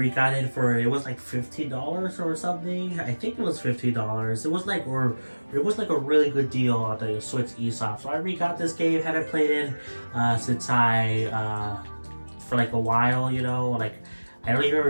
it for, it was like $15 or something. I think it was $15. It was like, a really good deal on the Switch eShop. So I re-got this game. Haven't played it since for like a while, you know, like. I don't even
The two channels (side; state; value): both; inverted; correlation -1.00